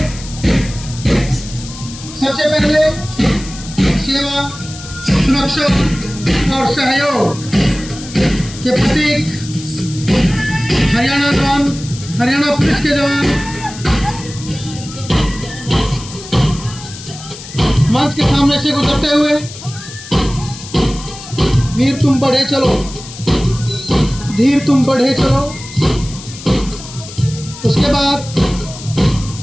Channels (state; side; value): noise; left; hiss, 14 dB below the sound